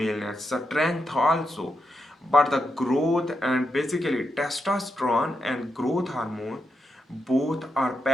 strength also. But the growth and basically testosterone and growth hormone both are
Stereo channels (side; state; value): both; normal; correlation 0.84